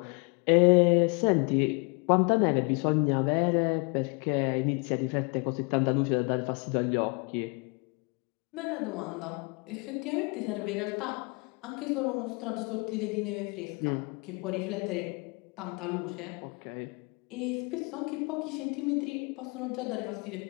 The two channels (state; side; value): quieter; right; 32.4 dB